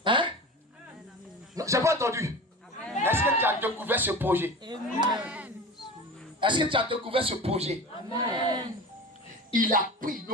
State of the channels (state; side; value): normal; both; correlation 0.33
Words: Hein? Non, j'ai pas entendu. Est-ce que tu as découvert ce projet? Est-ce que tu as découvert ce projet? Il a pris